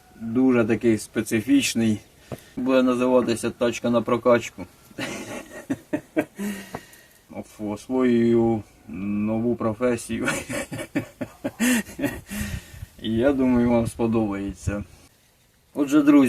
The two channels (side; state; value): both; identical; correlation 1.00